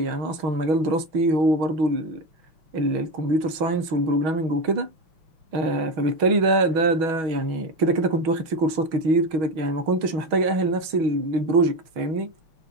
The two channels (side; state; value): left; late; 6.2 ms